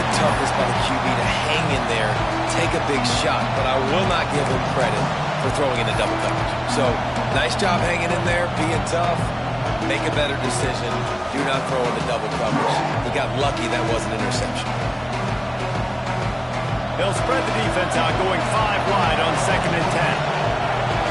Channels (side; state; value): both; identical; correlation 1.00